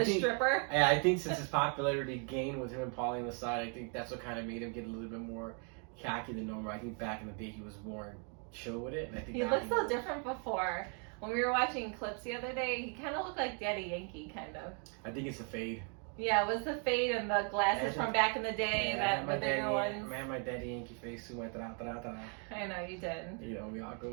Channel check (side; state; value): left; quieter; 39.6 dB